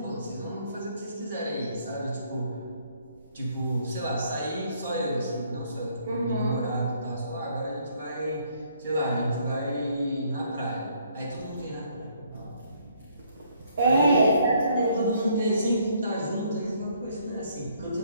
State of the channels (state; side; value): inverted; both; correlation -0.66